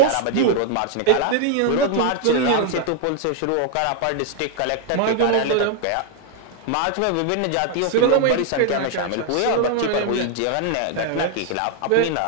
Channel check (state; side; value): different; both; correlation 0.00